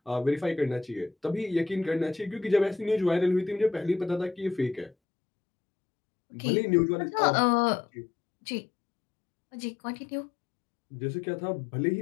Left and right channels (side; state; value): right; drops out; at 5.0 s